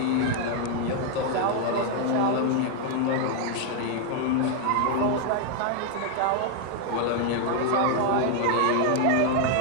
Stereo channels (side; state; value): both; different; correlation 0.00